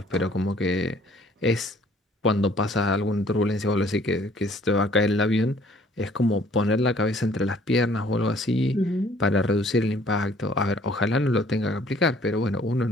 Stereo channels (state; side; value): normal; both; correlation 0.58